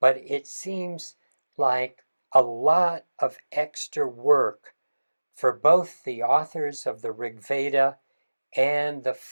but it seems like a lot of extra work for both the authors of the Rig Veda and the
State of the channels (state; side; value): inverted; both; correlation -1.00